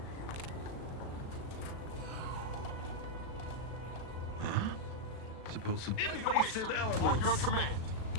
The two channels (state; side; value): late; right; 36 ms